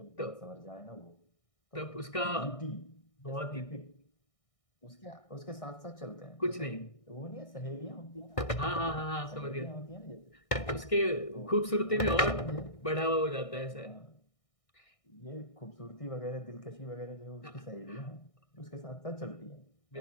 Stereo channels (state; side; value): late; right; 1.6 ms